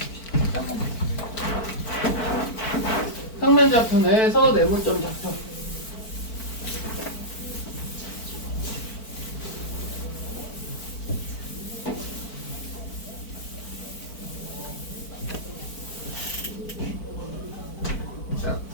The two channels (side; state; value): right; late; 4.5 ms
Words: 평면 좌표 내에서 내분점 좌표.